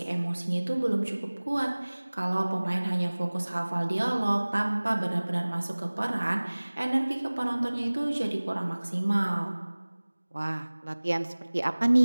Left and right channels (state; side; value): inverted; both; correlation -1.00